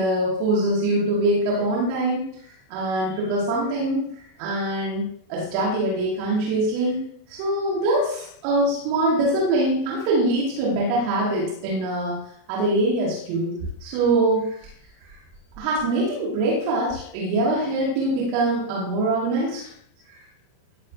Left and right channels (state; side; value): late; left; 37 ms